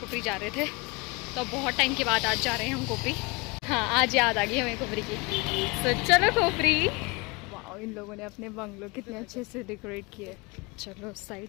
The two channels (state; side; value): quieter; right; 27.2 dB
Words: जा रहे थे, तो बहुत टाइम के बाद आज जा रहे हैं हम कोपरी। हाँ आज याद आ गई हमें कोपरी की। तो चलो कोपरी। वाह इन लोगों ने अपने बंगलो कितने अच्छे से डेकोरेट किए। चलो उस